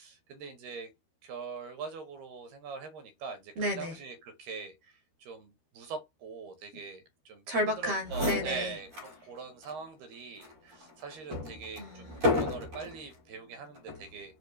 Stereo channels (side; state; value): left; late; 13 ms